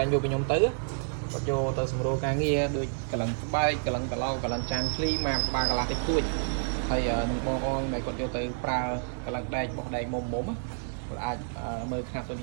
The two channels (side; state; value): left; silent; digital silence